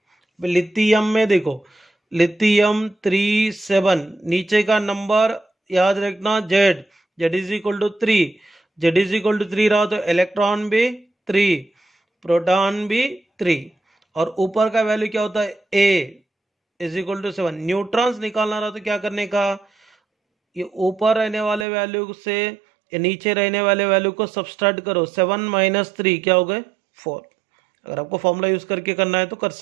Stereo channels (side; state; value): left; drops out; at 21.7 s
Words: लिथियम में देखो, लिथियम 37, नीचे का नंबर याद रखना Z, Z is equal to 3, Z is equal to 3 रहा तो इलेक्ट्रॉन भी 3, प्रोटॉन भी 3, और ऊपर का वैल्यू क्या होता है, ए इज इक्वल टू 7। न्यूट्रॉन्स निकालना रहा तो क्या करने का, ये ऊपर रहने वाले वैल्यू से ये नीचे रहने वाले वैल्यू को सबट्रैक्ट करो, 7 माइनस 3 क्या हो गए, 4। अगर आपको फॉर्मूला यूज करके करना है तो कर